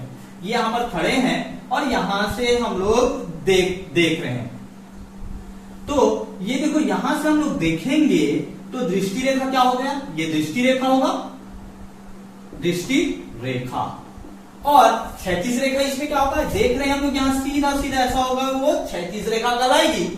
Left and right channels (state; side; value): identical; both; correlation 1.00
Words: ये यहां पर खड़े हैं और यहां से हम लोग देख रहे हैं। तो ये देखो, यहां से हम लोग देखेंगे तो दृष्टि रेखा क्या हो गया, ये दृष्टि रेखा होगा, दृष्टि रेखा। और क्षैतिज रेखा इसमें क्या होगा, देख रहे हैं हम लोग यहां सीधा ऐसा होगा, वो क्षैतिज रेखा कहलाएगी।